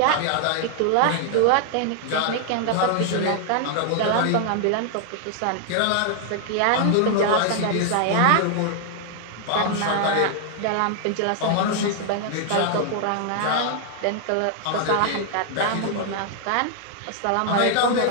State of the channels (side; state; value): both; different; correlation 0.00